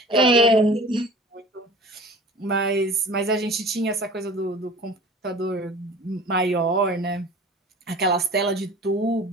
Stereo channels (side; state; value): both; normal; correlation 0.42